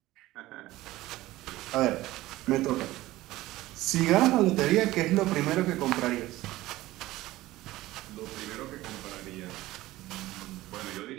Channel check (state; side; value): quieter; left; 17.1 dB